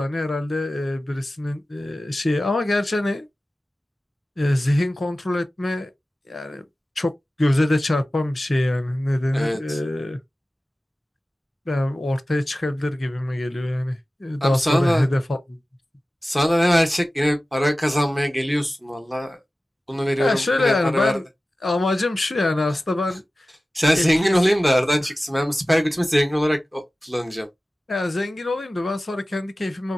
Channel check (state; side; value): normal; both; correlation 0.96